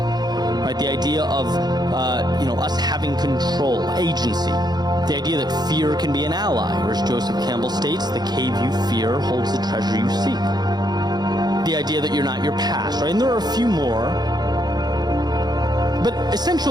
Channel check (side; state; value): left; late; 0.20 ms